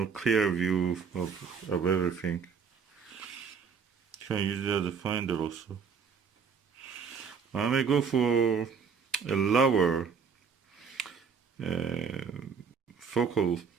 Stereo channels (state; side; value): quieter; left; 6.1 dB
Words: clear view of everything. You can use it as a finder also. I may go for a lower focal